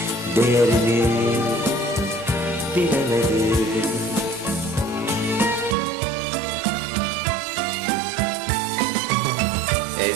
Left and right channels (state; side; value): drops out; left; at 5.8 s